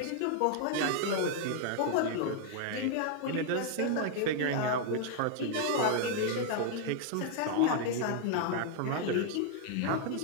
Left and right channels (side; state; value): both; different; correlation 0.00